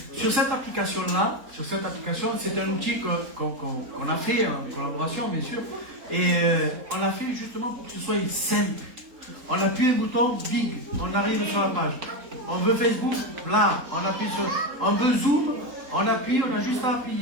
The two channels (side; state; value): left; late; 3.8 ms